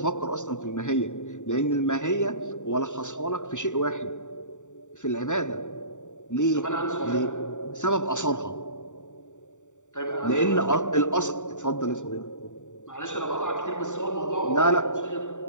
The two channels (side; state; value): right; late; 0.86 ms